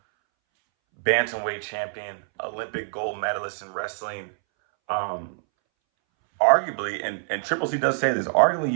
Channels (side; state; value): left; silent; 61 dB below the other